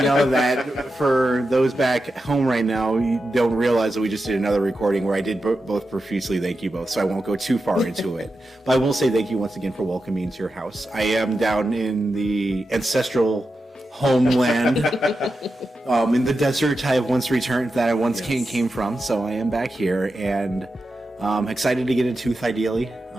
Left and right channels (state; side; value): normal; both; correlation 0.90